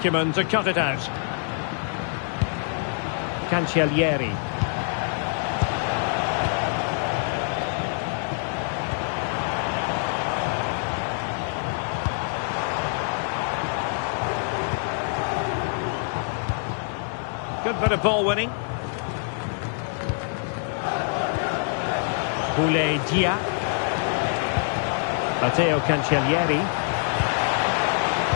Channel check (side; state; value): right; silent; 61 dB below the other